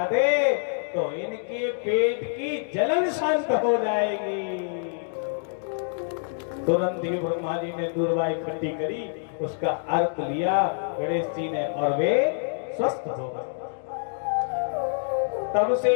दे तो इनके पेट की जलन शांत हो जाएगी। तुरंत ही ब्रह्मा जी ने दूर्वा इकट्ठी करी, उसका अर्क लिया गणेश जी ने और वे स्वस्थ हो गए। तब से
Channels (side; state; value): right; silent; digital silence